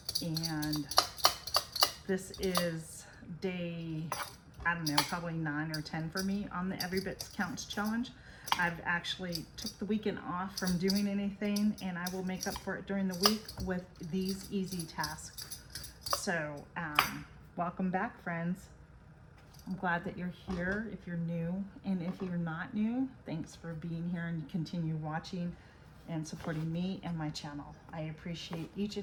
And this is day, I don't know, probably 9 or 10 for me on the Everybit Counts challenge. I've actually took the weekend off from doing anything, and I will make up for it during the week with these easy tasks. So welcome back, friends. I'm glad that you're here if you're new, and if you're not new, thanks for being here and continue watching and supporting me and my channel. I appreciate each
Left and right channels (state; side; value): identical; both; correlation 1.00